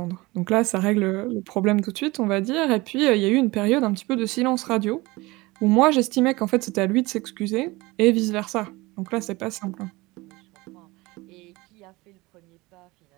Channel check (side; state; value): left; quieter; 22.1 dB